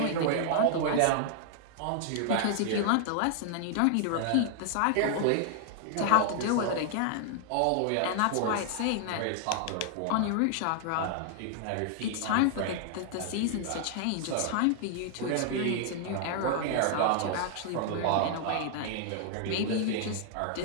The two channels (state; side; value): different; both; correlation 0.00